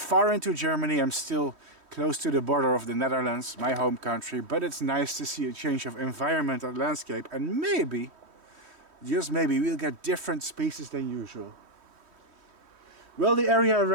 into Germany. I'm still close to the border of the Netherlands, my home country. But it's nice to see a change of environment and landscape. And maybe, just maybe, we'll get different species than usual. Well, the area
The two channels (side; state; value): left; late; 3.1 ms